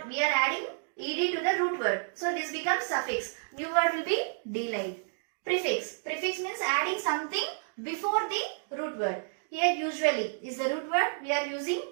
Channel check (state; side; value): silent; left; digital silence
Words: we are adding, ed to the root word. So this becomes suffix. New word will be delayed. Prefix. Prefix means adding something before the root word. Here usually is the root word.